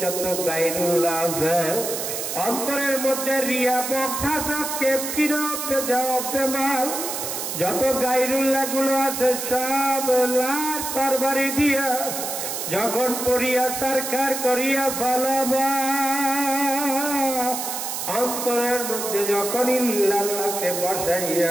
যত গায়রুল্লাহ আছে, অন্তরের মধ্যে রিয়া বক্তা কেপকিরা পেজাব বেমাল যত গায়রুল্লাহ গুলো আছে সব লার তরবারি দিয়া যখন পড়িয়া সরকার করিয়া ফলাবা, অন্তরের মধ্যে যখন ইল্লাল্লাহকে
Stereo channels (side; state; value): right; noise; hiss, 4 dB below the sound